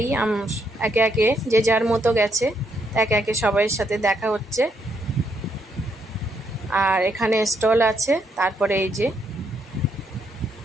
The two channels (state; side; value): normal; both; correlation 0.75